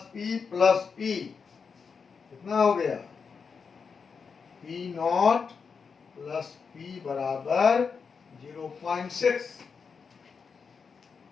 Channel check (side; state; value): right; quieter; 5.7 dB